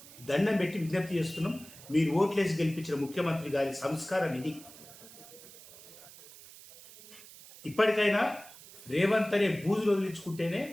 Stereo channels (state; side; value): noise; right; hiss, 19 dB below the sound